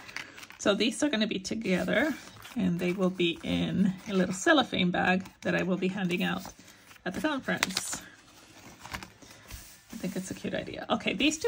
So these are going to be together, and they will be in a little cellophane bag that I will be handing out at the conference. I think it's a cute idea. Okay, these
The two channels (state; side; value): identical; both; correlation 1.00